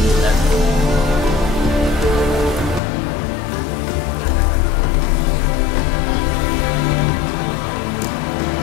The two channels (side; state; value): right; drops out; at 2.8 s